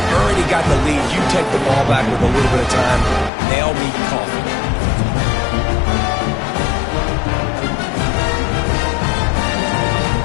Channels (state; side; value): drops out; right; at 3.3 s